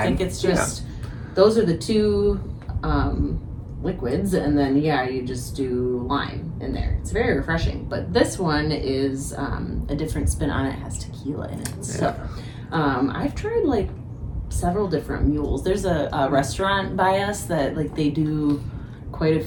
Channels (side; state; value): both; identical; correlation 1.00